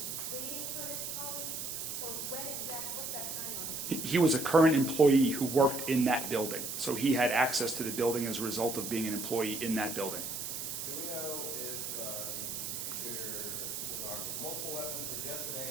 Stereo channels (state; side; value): noise; right; hiss, 5 dB below the sound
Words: waiting for his colleagues? Or when exactly, what's that timeline? He was a current employee who worked in that building, so he had access to the building as a result of being an employee in that building. Do we know if the shooter was armed with multiple weapons or just an